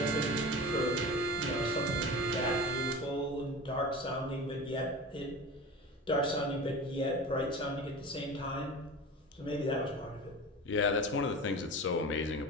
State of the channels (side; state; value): both; normal; correlation 0.32